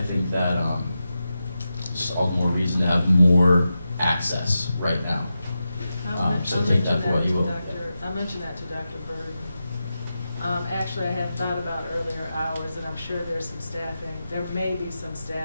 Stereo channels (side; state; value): both; inverted; correlation -0.90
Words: think that just all the more reason to have more access right now. So take that for what you will. I'll mention that to Dr. Burden. Actually, I had thought about earlier hours, and I'm sure there's some staffing. There may be some